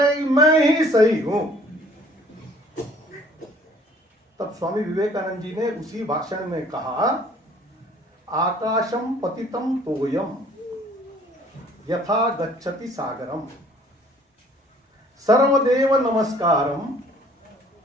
हैं कि मैं ही सही हूं। तब स्वामी विवेकानंद जी ने उसी भाषण में कहा, आकाशम पतितम तोयम यथा गच्छति सागरम सर्वदेव नमस्कारम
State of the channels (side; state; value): both; normal; correlation 0.56